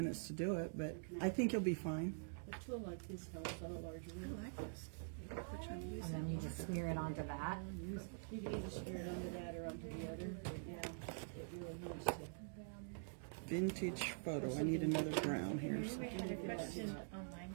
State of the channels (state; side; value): silent; left; digital silence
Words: to do it, but I think you'll be fine. A tool like this helps on a larger I wheel. like this. Which one do you And then you just smear it onto that. You can either smear it onto that or onto the other, but yeah, it really helps to. Vintage photo. I need another brown here. So. We had a question online